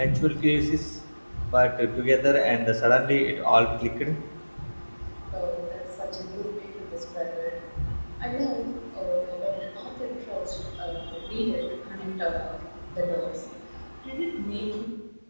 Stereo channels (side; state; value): both; inverted; correlation -1.00